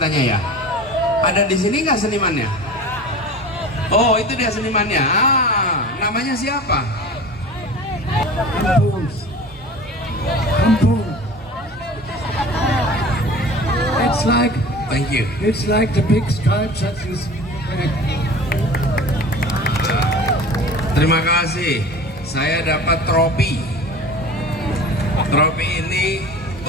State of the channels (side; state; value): both; normal; correlation 0.39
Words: ya. Ada di sini nggak senimannya? Oh itu dia senimannya. Namanya siapa? Kampung. Kampung. Thank you. It's like the big stripes that you see. Terima kasih. Saya dapat trofi. Trofi ini